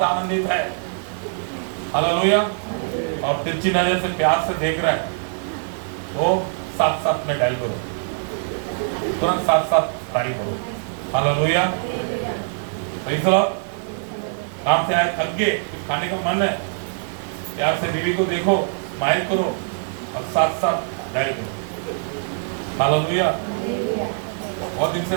आनंदित है, हालेलुया, और तिरछी नजर से प्यार से देख रहा है, वो 7-7 में डायल करो, तुरंत 7-7 डायल करो। हालेलुया। काम से आए थक गए, कुछ खाने का मन है, प्यार से बीवी को देखो, स्माइल करो और 7-7 डायल करो। हालेलुया। बहुत दिन से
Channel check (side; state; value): left; silent; 64 dB below the other